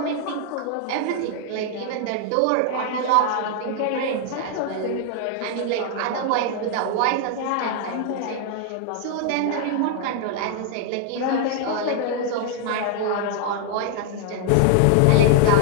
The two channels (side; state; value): both; different; correlation 0.00